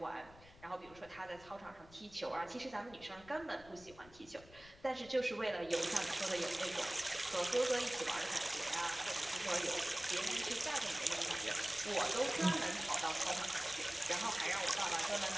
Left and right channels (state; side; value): noise; left; rumble, 22 dB below the sound